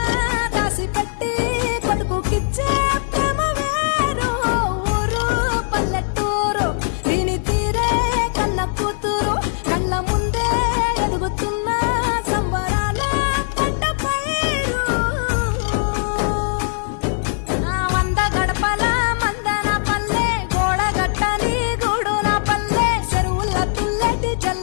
దాసి పెట్టి కొడుకుకిచ్చే ప్రేమ వేరు ఊరు పల్లెటూరు దీని తీరే కన్న కూతురు కళ్ళ ముందే ఎదుగుతున్న సంబరాల పంట పైరు వంద గడపల మందన పల్లె గోడ గట్టని గూడు నా పల్లె చెరువుల తుల్లెటి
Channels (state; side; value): silent; right; 66 dB below the other